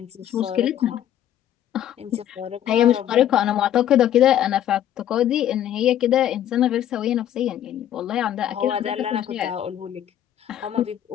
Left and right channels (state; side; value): quieter; right; 11.1 dB